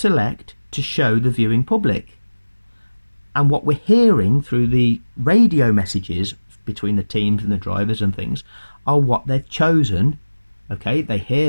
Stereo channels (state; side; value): inverted; both; correlation -1.00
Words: to show the viewing public. And what we're hearing through the radio messages between the teams and the drivers and things are what they've chosen. Okay, they